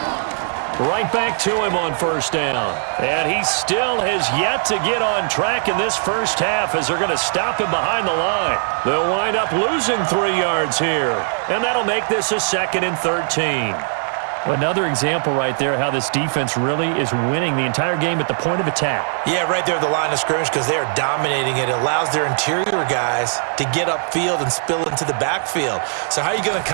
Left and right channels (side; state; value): left; silent; digital silence